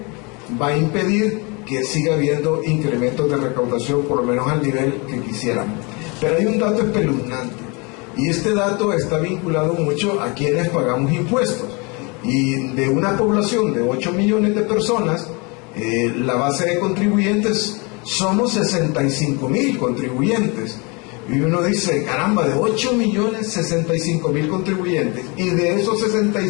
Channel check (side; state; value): right; quieter; 29.5 dB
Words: va a impedir que siga habiendo incrementos de recaudación, por lo menos al nivel que quisiéramos. Pero hay un dato espeluznante, y este dato está vinculado mucho a quienes pagamos impuestos. Y de una población de 8 millones de personas, la base de contribuyentes somos 65,000 contribuyentes, Y uno dice, caramba, de 8.065.000 contribuyentes, y de esos